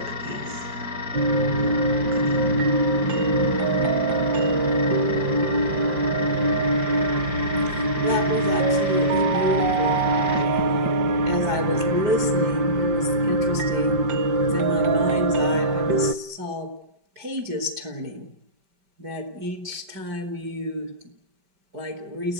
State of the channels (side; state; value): left; late; 5.1 ms